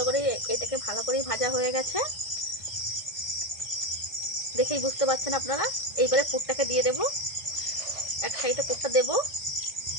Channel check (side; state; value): right; late; 1.5 ms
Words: করে এটাকে ভালো করেই ভাজা হয়ে গেছে, দেখেই বুঝতে পারছেন আপনারা। এইবারে পুরটাকে দিয়ে দেব, এক সাইডে পুরটা দেব,